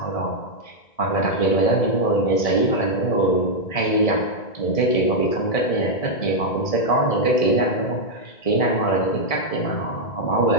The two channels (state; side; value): late; right; 1.7 ms